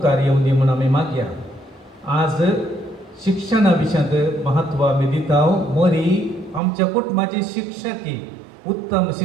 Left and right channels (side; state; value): left; drops out; at 6.6 s